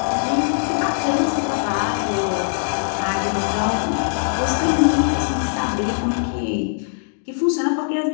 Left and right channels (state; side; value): silent; right; digital silence